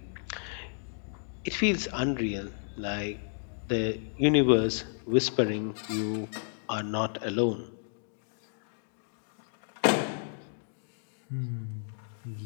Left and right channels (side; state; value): right; silent; digital silence